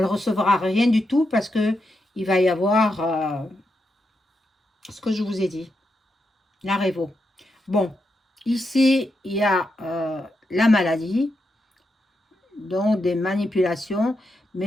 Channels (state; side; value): normal; both; correlation 0.84